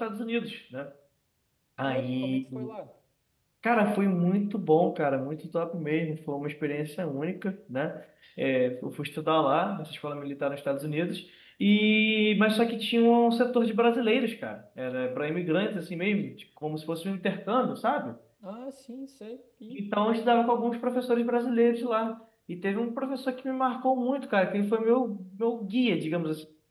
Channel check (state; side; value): identical; both; correlation 1.00